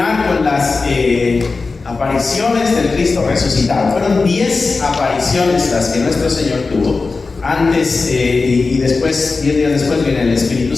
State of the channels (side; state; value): right; quieter; 4.1 dB